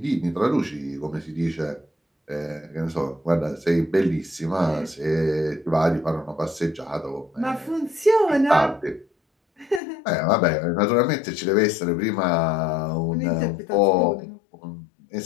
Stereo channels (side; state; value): right; drops out; at 9.8 s